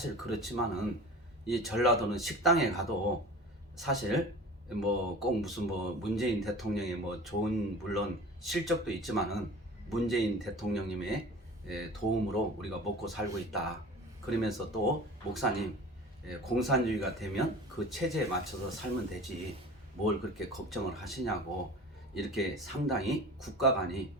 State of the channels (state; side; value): normal; both; correlation 0.39